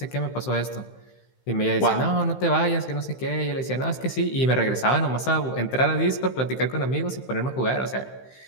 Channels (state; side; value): late; right; 15 ms